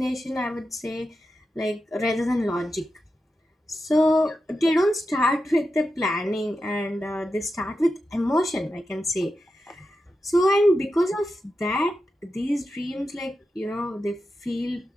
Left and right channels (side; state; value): both; normal; correlation 0.90